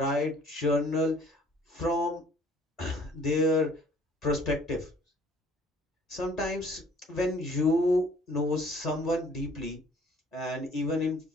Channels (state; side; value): normal; both; correlation 0.56